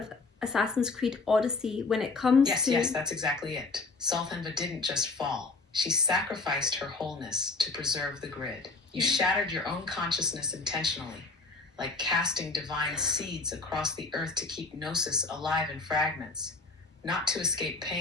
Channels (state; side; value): quieter; right; 3.7 dB